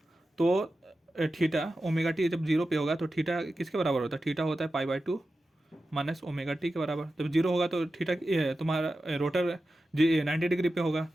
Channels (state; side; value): normal; both; correlation 0.92